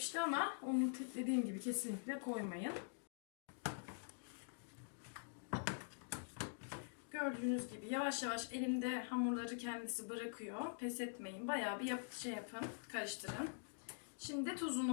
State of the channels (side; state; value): right; silent; digital silence